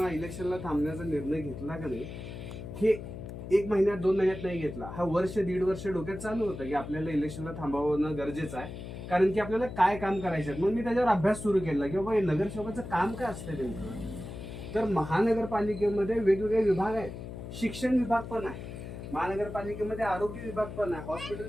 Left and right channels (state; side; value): noise; left; hum, 10 dB below the sound